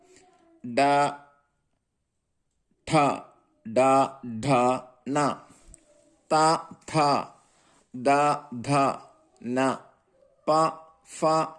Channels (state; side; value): identical; both; correlation 1.00